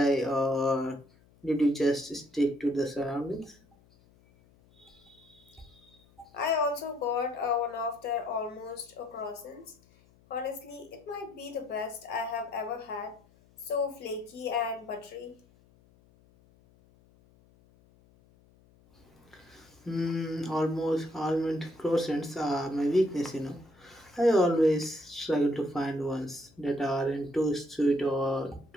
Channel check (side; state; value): left; noise; hum, 29 dB below the sound